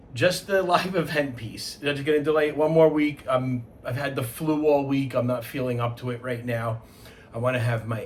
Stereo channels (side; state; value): both; identical; correlation 1.00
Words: Just the live event piece. I'm just gonna delay it one more week. I've had the flu all week. I'm not feeling up to it right now. I want to have my